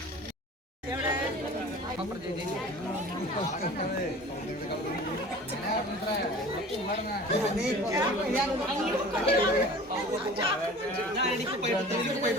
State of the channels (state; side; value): normal; both; correlation 0.42